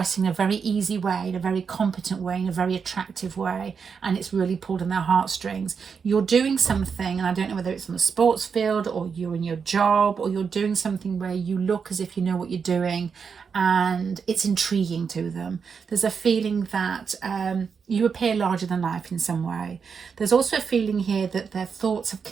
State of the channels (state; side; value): quieter; left; 6.1 dB